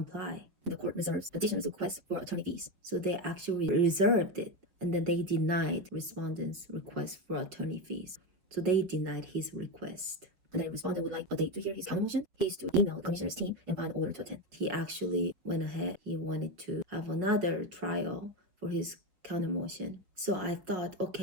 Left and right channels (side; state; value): left; late; 5.3 ms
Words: The court reserves petitioner's request for attorney fees. So they actually reserved it, and then they denied respondent's request for attorney fees. So they denied his request. And then respondent would like a date to hear his counter motion. He is to email the commissioner's team and find an order to attend. He actually went ahead. He wanted to have another trial for his counter motion. So I thought,